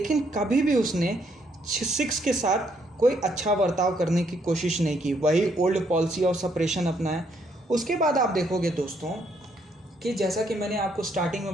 कभी भी उसने सिख्स के साथ कोई अच्छा बर्ताव करने की कोशिश नहीं की, वही ओल्ड पॉलिसी ऑफ सेपरेशन अपनाया। उसके बाद आप देखोगे दोस्तों कि जैसा कि मैंने आपको स्टार्टिंग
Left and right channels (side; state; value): both; normal; correlation 0.71